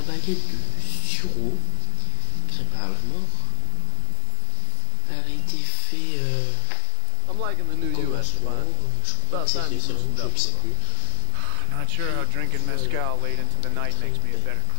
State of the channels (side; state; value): both; different; correlation 0.00